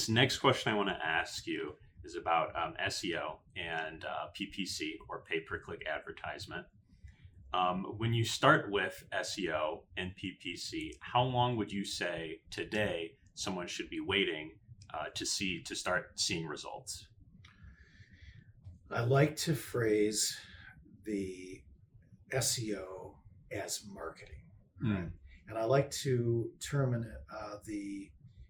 next question I want to ask you is about SEO and PPC, or pay-per-click advertisement. When you start with SEO and PPC, how long would you say today someone should be waiting to start seeing results? I like to phrase the SEO as marketing, right? And I like to term the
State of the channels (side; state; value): both; identical; correlation 1.00